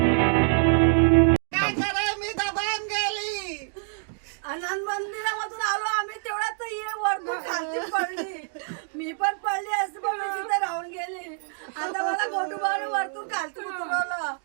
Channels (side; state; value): left; silent; digital silence